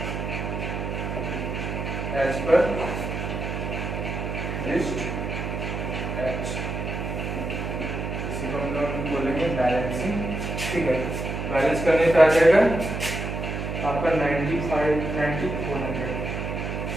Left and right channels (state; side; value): noise; right; hum, 4 dB below the sound